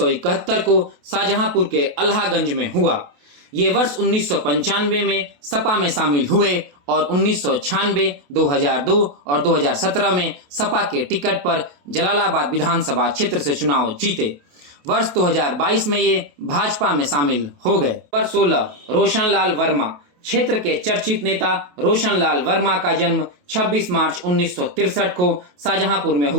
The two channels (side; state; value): left; late; 28 ms